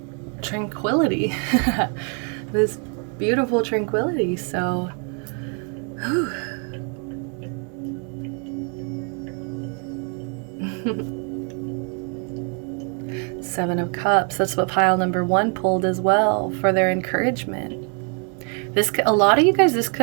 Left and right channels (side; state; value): left; quieter; 39.7 dB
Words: tranquility, this beautiful tranquility. So Seven of Cups, that's what pile number 1 pulled as well for their encouragement. A lot of you guys, this